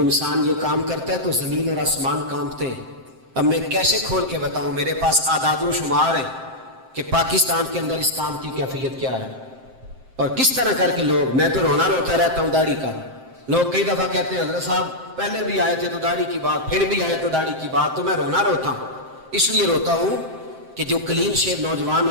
یہ کام کرتا ہے تو زمین اور آسمان کانپتے ہیں۔ اب میں کیسے کھول کے بتاؤں، میرے پاس اعداد و شمار ہیں کہ پاکستان کے اندر اس کام کی کیفیت کیا ہے، اور کس طرح کر کے لوگ، میں تو رونا روتا رہتا ہوں داڑھی کا۔ لوگ کئی دفعہ کہتے ہیں حضرت صاحب پہلے بھی آئے تھے تو داڑھی کی بات، پھر بھی آئے تو داڑھی کی بات، تو میں رونا روتا ہوں۔ اس لیے روتا ہوں کہ جو کلین شیو نوجوان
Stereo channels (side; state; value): left; late; 7.6 ms